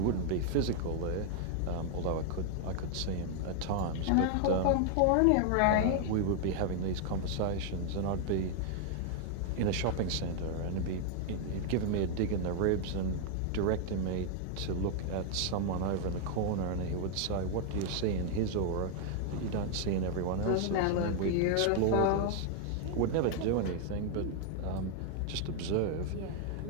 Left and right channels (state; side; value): different; both; correlation 0.00